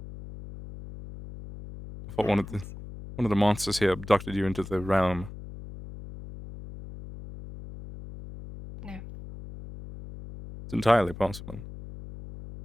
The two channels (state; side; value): noise; left; hum, 13 dB below the sound